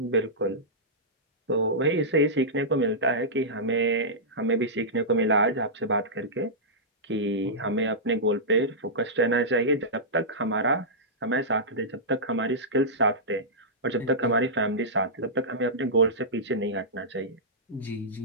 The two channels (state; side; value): normal; both; correlation -0.15